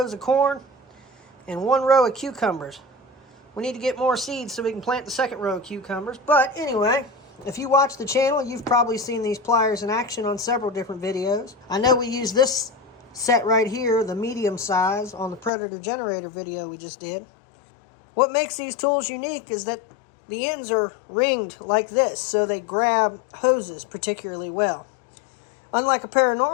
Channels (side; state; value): right; drops out; at 15.5 s